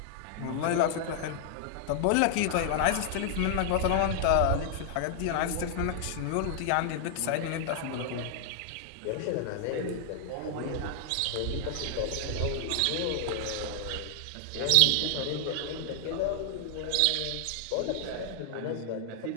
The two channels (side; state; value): both; different; correlation 0.00